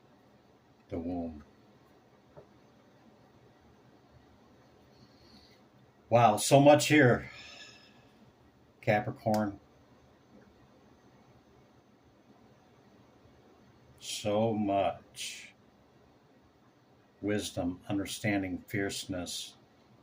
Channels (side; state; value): both; identical; correlation 1.00